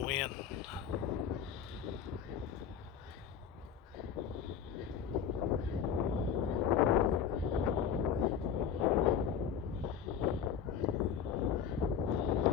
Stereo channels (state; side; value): quieter; right; 7.9 dB